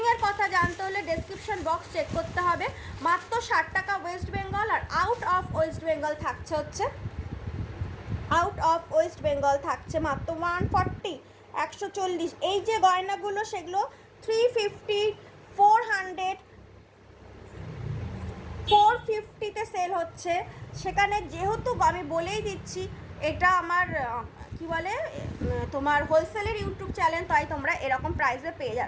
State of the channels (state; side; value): identical; both; correlation 1.00